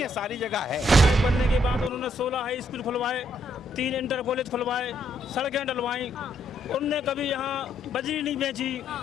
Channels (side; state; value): both; normal; correlation 0.73